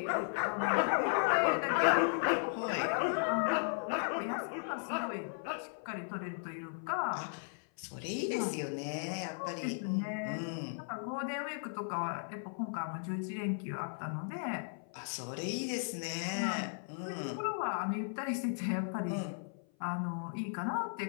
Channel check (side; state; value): right; silent; 54 dB below the other